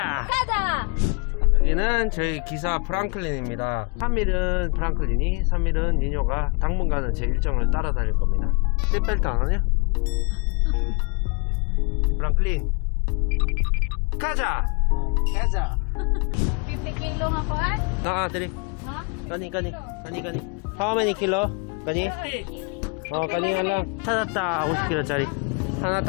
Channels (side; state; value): right; quieter; 34.1 dB